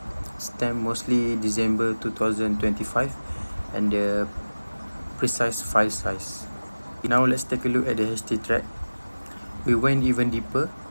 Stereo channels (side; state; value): both; inverted; correlation -1.00